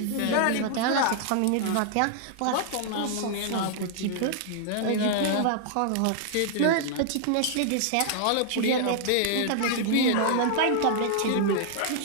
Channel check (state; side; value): different; both; correlation -0.01